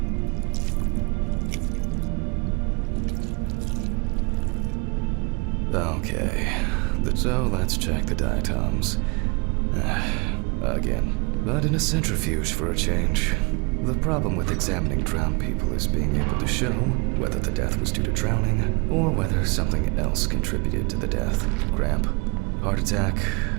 Okay, so let's check the diatoms. Again, but in a centrifuge for a change. The problem with examining drowned people is being able to show whether the death was due to drowning or whether something else contributed to the death. Cramp, heart attack,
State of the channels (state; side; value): quieter; left; 29.0 dB